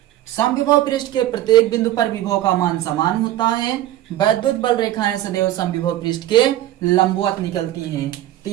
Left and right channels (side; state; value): left; quieter; 13.6 dB